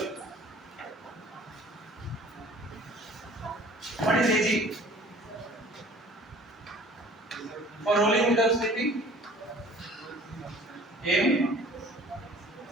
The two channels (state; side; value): normal; both; correlation 0.49